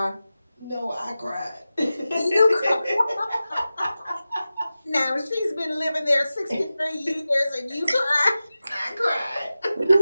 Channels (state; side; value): inverted; both; correlation -0.94